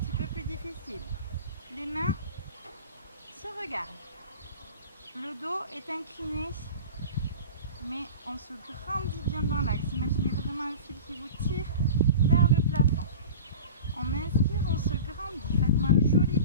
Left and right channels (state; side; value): inverted; both; correlation -0.34